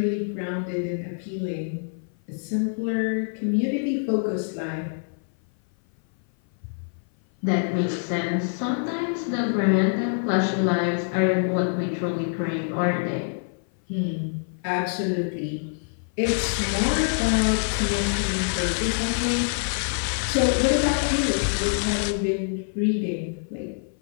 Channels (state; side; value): silent; right; 57 dB below the other